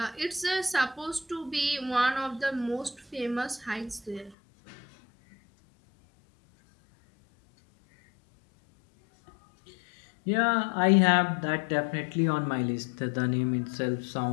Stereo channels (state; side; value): drops out; right; at 4.4 s